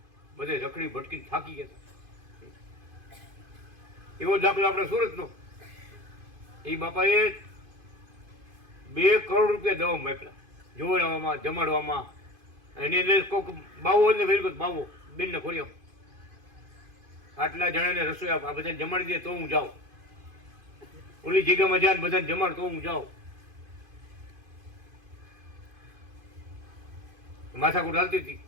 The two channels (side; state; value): left; late; 2.5 ms